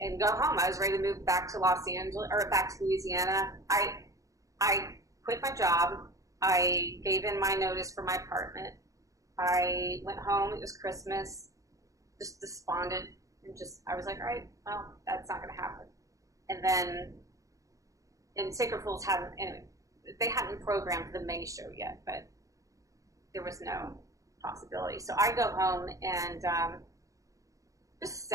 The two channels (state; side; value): late; left; 0.16 ms